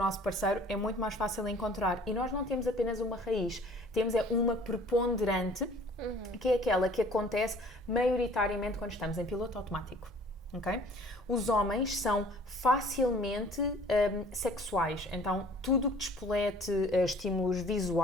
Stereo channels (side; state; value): both; normal; correlation 0.51